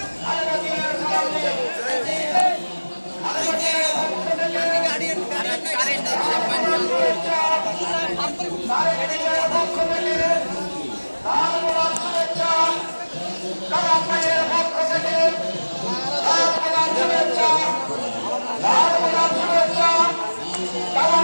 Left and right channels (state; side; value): inverted; both; correlation -1.00